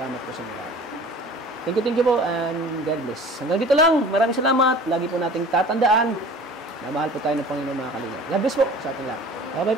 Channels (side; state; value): both; normal; correlation 0.44